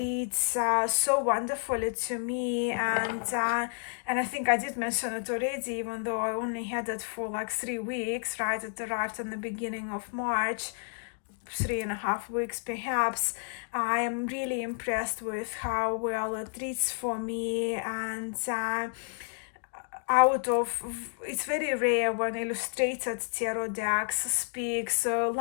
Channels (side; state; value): right; silent; digital silence